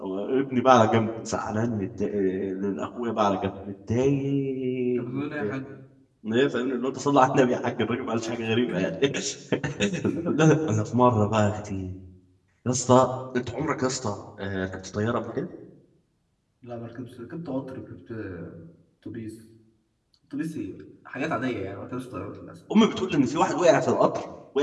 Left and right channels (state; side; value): identical; both; correlation 1.00